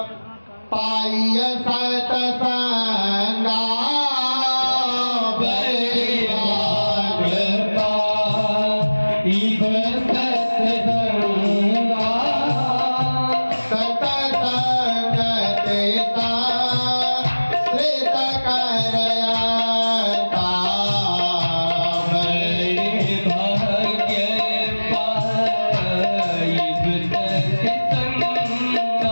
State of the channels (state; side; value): inverted; both; correlation -1.00